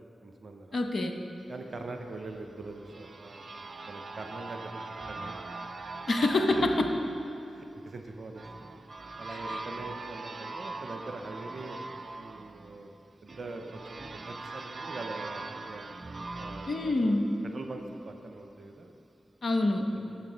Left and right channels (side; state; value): both; normal; correlation 0.90